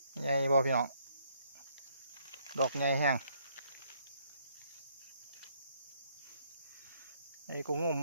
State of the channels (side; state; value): both; inverted; correlation -0.68